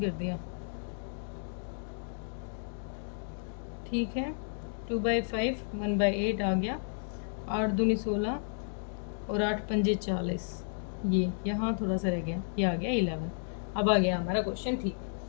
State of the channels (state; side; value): silent; right; digital silence